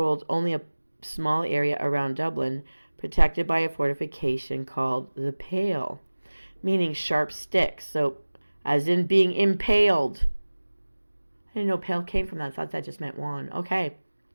only a small area around Dublin, protected by a fortification called the Pale, meaning sharp sticks. So, as in being impaled. I didn't know pale came from that. I thought that just meant wand. Okay.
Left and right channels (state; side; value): inverted; both; correlation -1.00